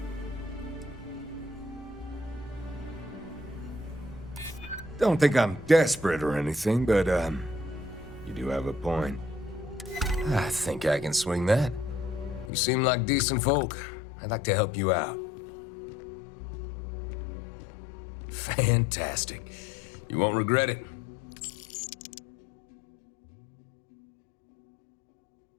Don't think I'm desperate or anything, but, you do have a point. I think I can swing that. You seem like decent folk. I'd like to help you out. Fantastic. You won't regret it.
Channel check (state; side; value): drops out; right; at 12.5 s